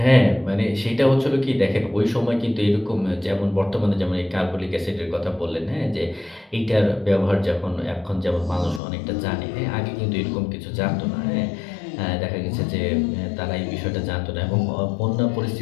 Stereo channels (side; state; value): right; drops out; at 8.8 s